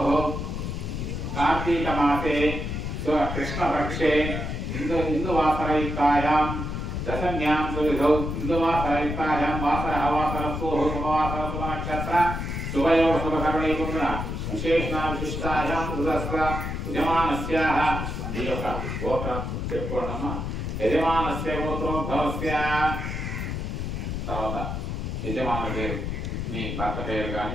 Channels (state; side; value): noise; left; rumble, 4 dB below the sound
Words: కార్తీక మాసే కృష్ణపక్షే ఇందువాసరయుక్తాయాం దశమ్యాం సువిధౌ ఇందువాసరయుక్తాయాం వాసరః వాసరస్సోః శుభవాసర శుభనక్షత్ర శుభయోగ శుభకరణీకున్న విశేషణ విశిష్టాయాం దురస్ర యజమానస్యాః ఈ యొక్క గోత్రం చెప్పుకోండమ్మా. యజమానస్య గోత్రోద్భవస్య. తర్వాత యజమాన పేరు, మీ భర్త పేరు